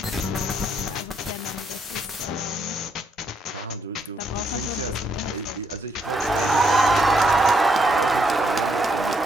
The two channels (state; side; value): normal; both; correlation 0.74